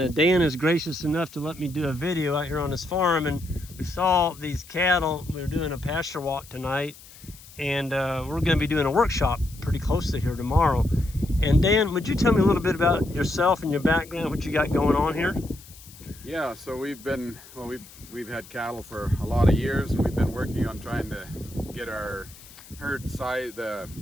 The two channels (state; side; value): noise; left; hiss, 20 dB below the sound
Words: Dan is gracious enough to let me do a video out here on his farm. And we saw these cattle. We were doing a pasture walk tonight, and we're going to be doing a workshop pretty close to here tomorrow. And Dan, would you tell me a little bit about yourself and your background, what you got going on here? Yeah, so we've had cattle for a lot of years, and we've been working on trying to get our herd size, the